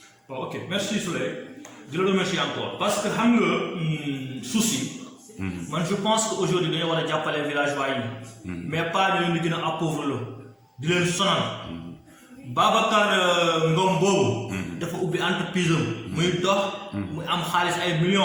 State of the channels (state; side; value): identical; both; correlation 1.00